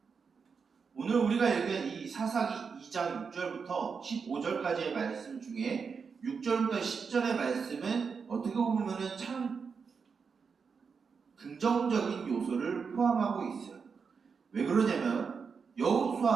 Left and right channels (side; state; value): left; quieter; 5.7 dB